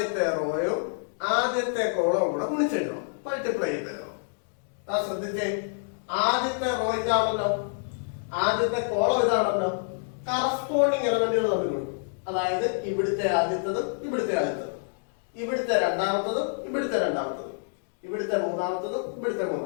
റോയും ആദ്യത്തെ കോളവും കൂടെ ഗുണിച്ചെഴുതണം, മൾട്ടിപ്ലൈ ചെയ്തെഴുതണം. ശ്രദ്ധിച്ചേ, ആദ്യത്തെ റോ ഇതാണല്ലോ, ആദ്യത്തെ കോളം ഇതാണല്ലോ. കറസ്പോണ്ടിങ് എലമെന്റുകൾ തമ്മിൽ കൊടുക്കും. അതായത് ഇവിടുത്തെ ആദ്യത്തതും ഇവിടുത്തെ ആദ്യത്തതും, ഇവിടുത്തെ രണ്ടാമത്തതും ഇവിടുത്തെ രണ്ടാമത്തതും, ഇവിടുത്തെ മൂന്നാമത്തതും ഇവിടുത്തെ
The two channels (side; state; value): right; silent; digital silence